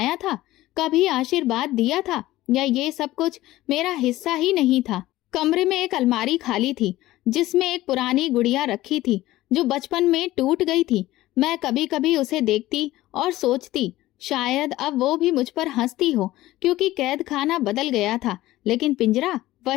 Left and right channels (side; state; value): right; quieter; 16.4 dB